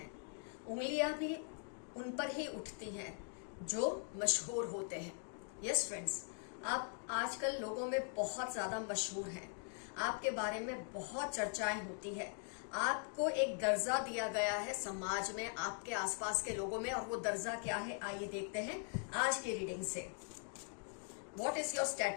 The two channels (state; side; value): silent; right; 50 dB below the other